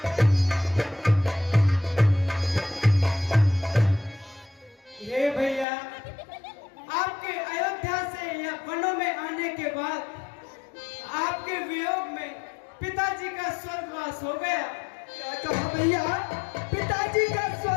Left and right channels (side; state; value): right; drops out; at 5.7 s